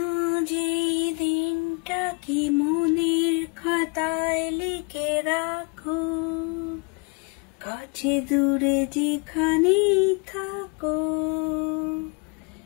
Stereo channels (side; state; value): right; quieter; 32.4 dB